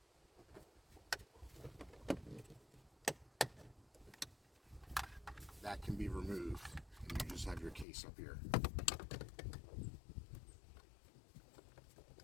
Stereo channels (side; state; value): right; drops out; at 7.9 s